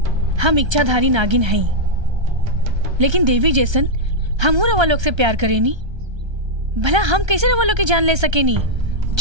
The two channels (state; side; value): late; left; 1.3 ms